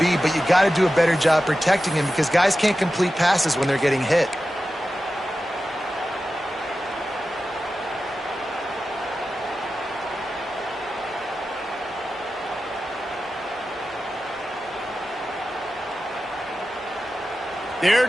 but you got to do a better job protecting him because guys can't complete passes when they're getting hit.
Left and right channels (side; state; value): both; normal; correlation 0.93